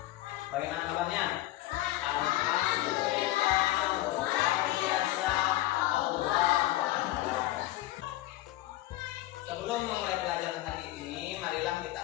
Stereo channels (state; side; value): quieter; right; 16.1 dB